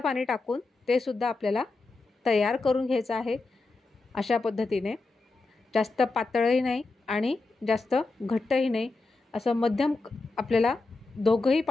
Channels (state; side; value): quieter; right; 3.5 dB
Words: टाकून ते सुद्धा आपल्याला तयार करून घ्यायचं आहे। अशा पद्धतीने जास्त पातळही नाही आणि जास्त घट्टही नाही, असं मध्यम आपल्याला दोघंही